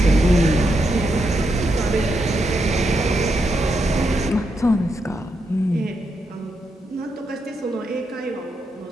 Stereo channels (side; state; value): both; normal; correlation 0.82